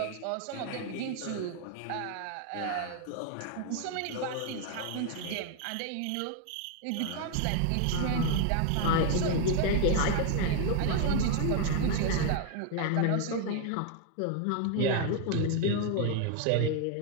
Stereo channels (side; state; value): both; different; correlation 0.00